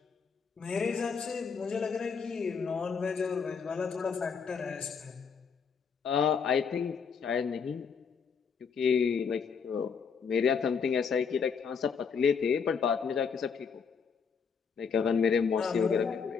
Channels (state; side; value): quieter; right; 6.1 dB